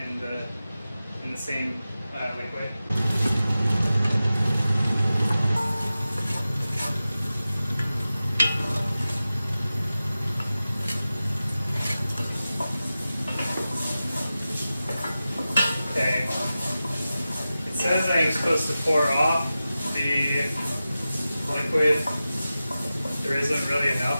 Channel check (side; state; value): both; inverted; correlation -0.94